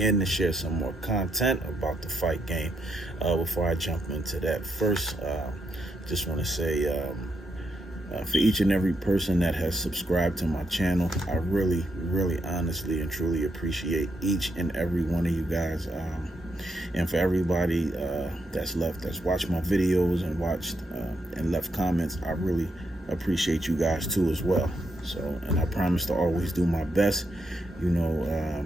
to share some more content about the fight game. Before I jump into that, first, just want to say for each and every person that has subscribed to my channel, I really, honestly, and truly appreciate each and every one of you guys. And for everybody that's watched my videos and watched and left comments, I really appreciate you guys too as well. So, and I promise to always do my best,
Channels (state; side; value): normal; both; correlation 0.80